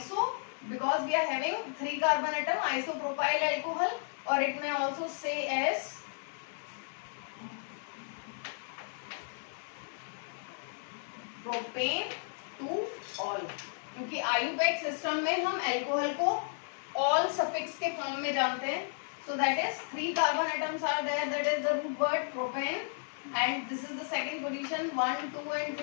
because we are having 3 carbon atom, isopropyl alcohol, or it may also say as propane two all, क्योंकि आयुपैक सिस्टम में हम अल्कोहल को ऑल सफिक्स के फॉर्म में जानते हैं. So that is 3 carbon atoms are there, that is the root word propane, and this is the second position 1 2 and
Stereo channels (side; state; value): right; silent; 55 dB below the other